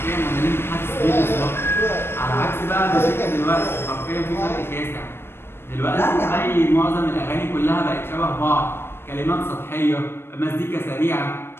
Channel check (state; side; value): late; right; 0.11 ms